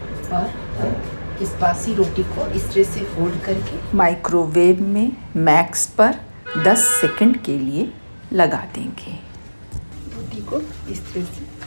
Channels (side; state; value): both; inverted; correlation -1.00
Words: और इस बासी रोटी को इस तरह से फोल्ड करके माइक्रोवेव में मैक्स पर 10 सेकंड के लिए लगा देंगे। रोटी को इस तरह से